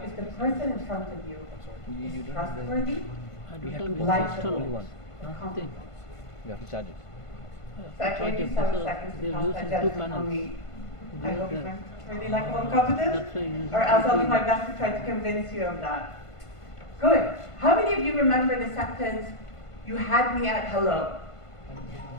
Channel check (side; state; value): right; late; 1.5 ms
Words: if the person in front of you is trustworthy, likable, or comfortable. So I gave you 7 seconds to pass that judgment on me. I hope you find really likable and competent, or else I'll do my best to try to convince you of that. Good. How many of you remember the sentence, "You had me at hello"?